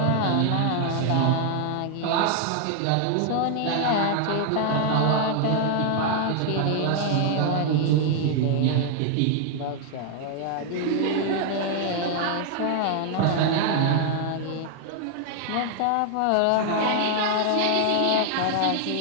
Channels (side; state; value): both; different; correlation 0.00